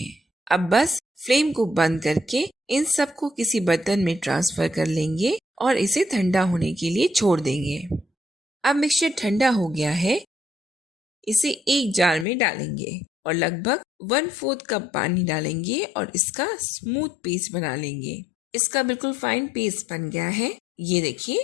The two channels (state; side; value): drops out; right; at 12.2 s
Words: अब बस फ्लेम को बंद करके इन सबको किसी बर्तन में ट्रांसफर कर लेंगे और इसे ठंडा होने के लिए छोड़ देंगे। अब मिक्सचर ठंडा हो गया है। इसे एक जार में डालेंगे और लगभग 1/4 कप पानी डालेंगे और इसका स्मूथ पेस्ट बना लेंगे। इसका बिल्कुल फाइन पेस्ट बन गया है। ये